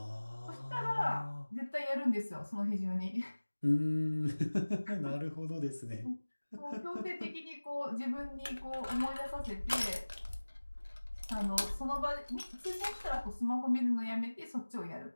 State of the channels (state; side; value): inverted; both; correlation -1.00